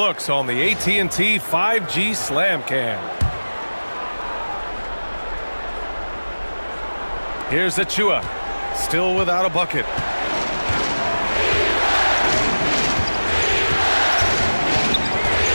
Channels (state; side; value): inverted; both; correlation -1.00